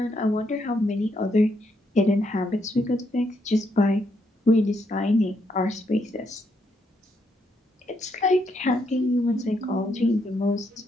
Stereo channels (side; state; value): both; normal; correlation 0.77